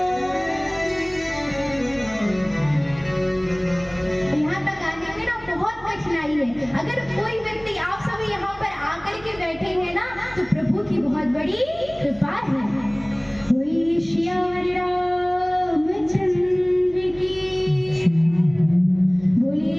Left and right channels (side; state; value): right; noise; hum, 23 dB below the sound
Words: यहाँ तक आने में ना बहुत कठिनाई है। अगर कोई व्यक्ति, आप सभी यहाँ पर आकर के बैठे हैं ना, तो प्रभु की बहुत बड़ी कृपा है। वही श्री रामचंद्र की,